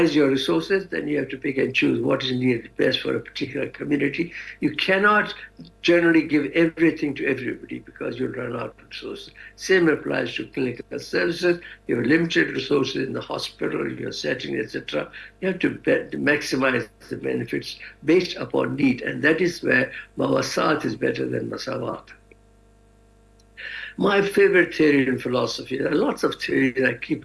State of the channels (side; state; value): both; identical; correlation 1.00